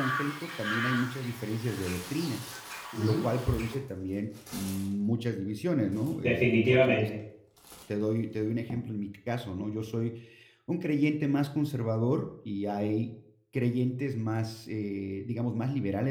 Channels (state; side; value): identical; both; correlation 1.00